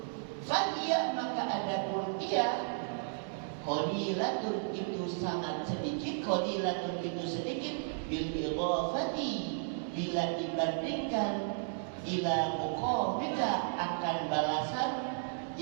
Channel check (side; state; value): left; silent; digital silence